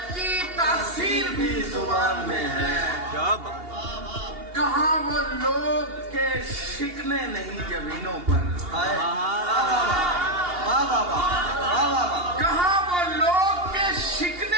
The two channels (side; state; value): left; late; 2.8 ms